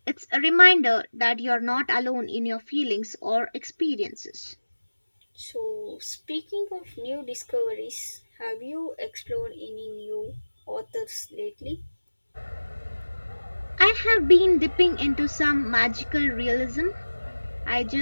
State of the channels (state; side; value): inverted; both; correlation -1.00